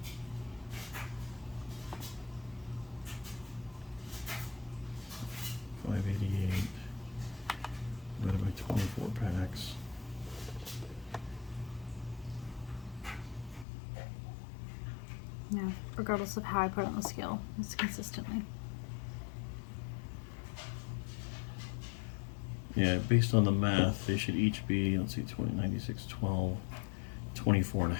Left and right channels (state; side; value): drops out; right; at 13.7 s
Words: Divided by 24 packs. Yeah, regardless of how I put it on the scale, it's consistently. Yeah, based on the math, they should each be, let's see, 20, 96, 12, 24 and a